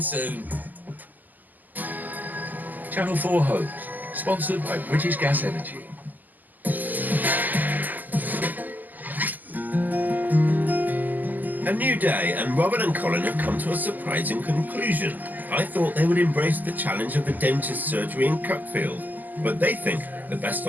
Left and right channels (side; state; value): left; late; 0.084 ms